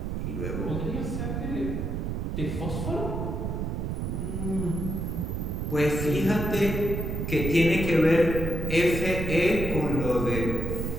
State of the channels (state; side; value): noise; right; rumble, 2 dB below the sound